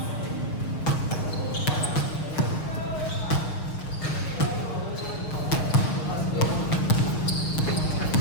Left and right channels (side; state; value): right; late; 6.3 ms